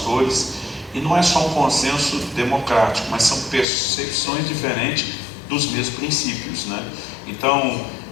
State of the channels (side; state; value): right; drops out; at 3.7 s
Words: e não é só um consenso democrático, mas são percepções diferentes dos mesmos princípios, Então,